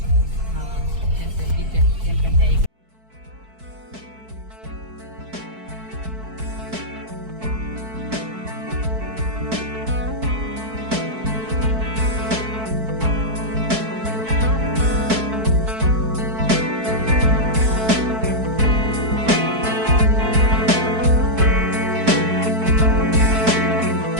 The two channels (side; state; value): left; late; 4.6 ms